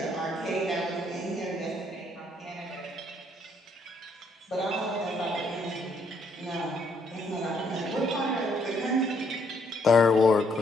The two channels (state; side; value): normal; both; correlation 0.70